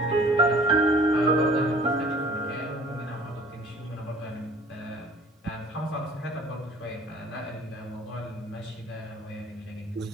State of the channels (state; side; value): normal; both; correlation 0.50